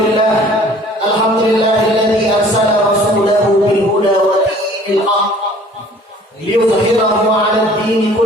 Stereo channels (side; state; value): both; normal; correlation 0.52